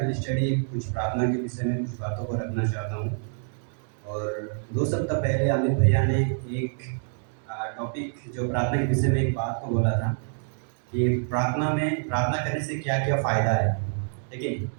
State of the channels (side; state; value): left; silent; digital silence